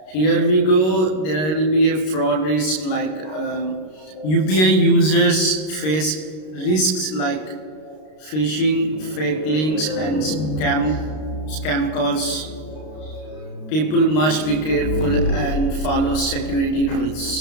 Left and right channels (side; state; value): right; late; 32 ms